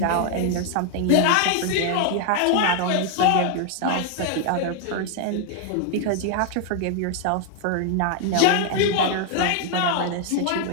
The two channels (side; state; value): both; different; correlation 0.00